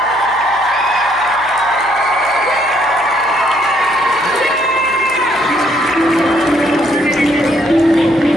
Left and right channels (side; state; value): right; noise; hum, 25 dB below the sound